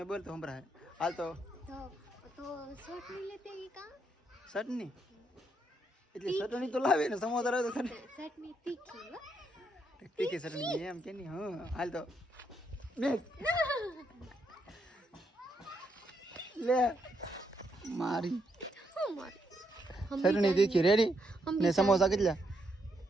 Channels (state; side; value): normal; both; correlation 0.78